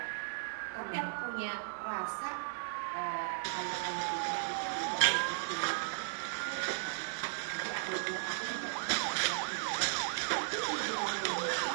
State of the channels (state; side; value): silent; left; 54 dB below the other